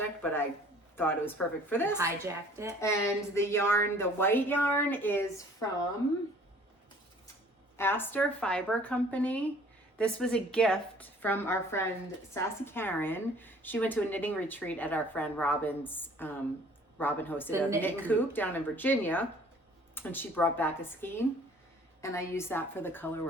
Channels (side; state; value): both; normal; correlation 0.53